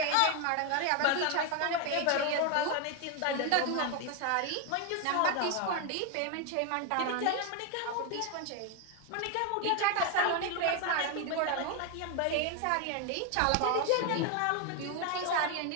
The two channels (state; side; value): different; both; correlation 0.01